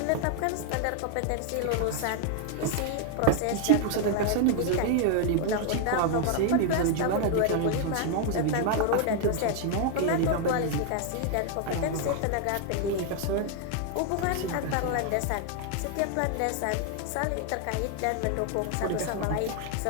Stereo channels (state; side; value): different; both; correlation 0.00